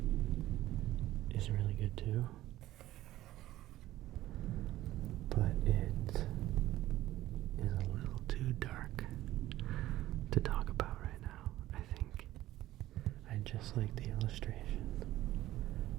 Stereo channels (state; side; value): quieter; left; 15.1 dB